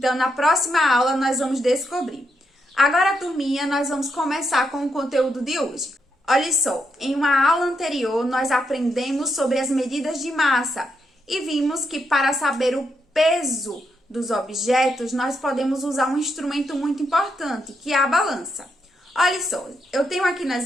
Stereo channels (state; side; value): normal; both; correlation 0.81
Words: na próxima aula, nós vamos descobrir. Agora, turminha, nós vamos começar com o conteúdo de hoje. Olha só, em uma aula anterior nós aprendemos sobre as medidas de massa e vimos que para saber o peso dos objetos nós podemos usar um instrumento muito importante, que é a balança. Olha só, eu tenho aqui